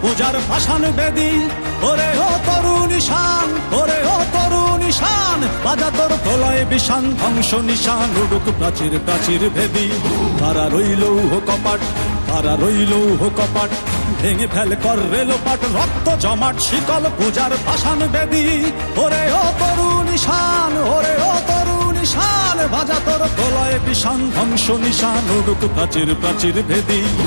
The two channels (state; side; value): inverted; both; correlation -1.00